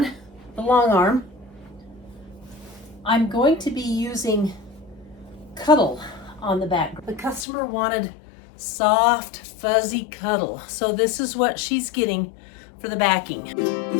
the Longarm. I'm going to be using cuddle on the back. The customer wanted soft, fuzzy cuddle, so this is what she's getting for the backing.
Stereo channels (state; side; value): drops out; right; at 7.5 s